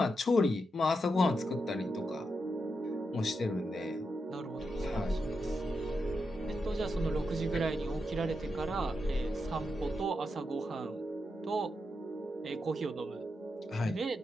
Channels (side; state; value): both; normal; correlation 0.85